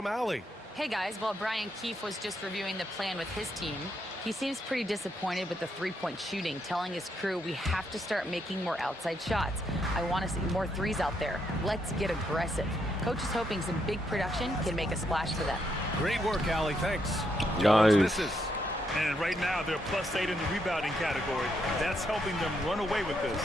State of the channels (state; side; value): normal; both; correlation 0.78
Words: Allie. Hey guys, while Brian Keefe was just reviewing the plan with his team, he seems pretty disappointed with the three-point shooting, telling his crew we have to start making more outside shots. I want to see more threes out there. Let's get aggressive. Coach is hoping some big production can make a splash for them. Great work, Allie. Thanks. Nice. Misses. And right now, they're +8 in the rebounding category. That's helping them run away with this.